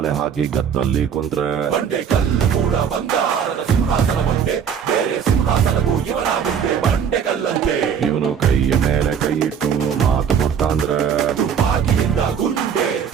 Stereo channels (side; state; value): left; quieter; 7.7 dB